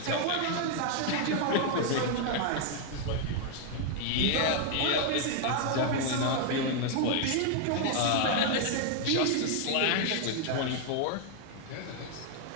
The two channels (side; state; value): both; different; correlation 0.00